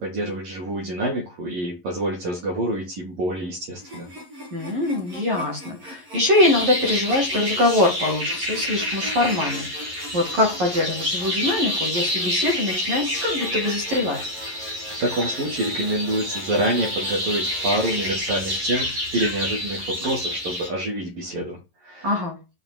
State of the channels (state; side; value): late; left; 11 ms